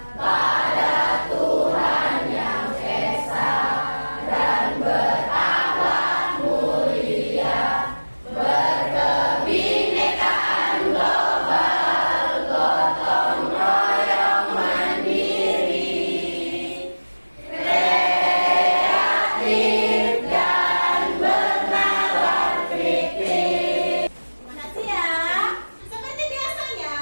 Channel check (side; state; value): both; inverted; correlation -1.00